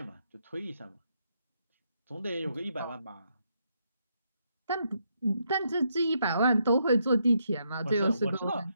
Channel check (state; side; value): inverted; both; correlation -0.78